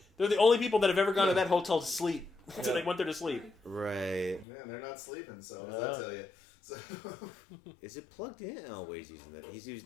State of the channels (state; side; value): drops out; right; at 4.5 s